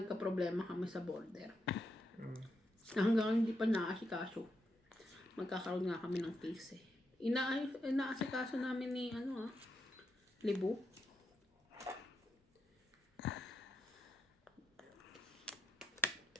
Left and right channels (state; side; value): normal; both; correlation 0.83